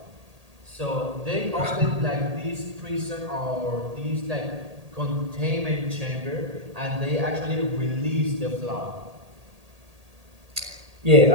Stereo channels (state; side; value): late; left; 1.8 ms